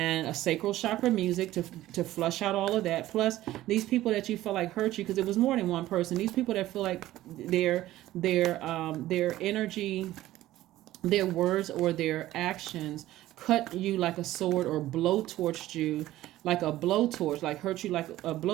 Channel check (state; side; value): quieter; left; 15.2 dB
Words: a sacral chakra music to flush out all of that. Plus, these people that you feel like hurt you, because it was more than one person. These people that feel like their energy, their words, or their actions cut you like a sword, or blowtorched you like a blowtorch, like hurt you like a